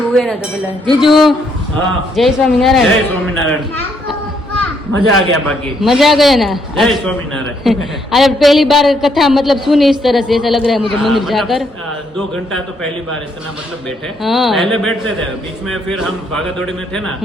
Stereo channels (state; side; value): normal; both; correlation 0.72